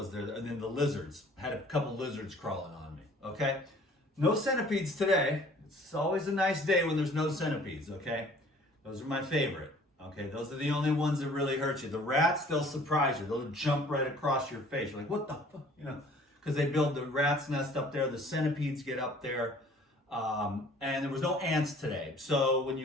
there? And then the lizards. I had a couple lizards crawling on me, okay? No centipedes today. It's always a nice day when there's no centipedes, okay? Those are my favorite, okay? Those are the only ones that really hurt you. The rats, they'll surprise you. They'll jump right across your face. You're like, what the fuck? You know, because they build the rat's nest up there. The centipedes get up there. And there was no ants today. So when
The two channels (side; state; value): both; normal; correlation 0.53